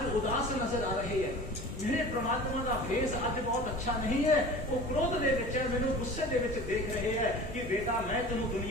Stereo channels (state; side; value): noise; left; hum, 12 dB below the sound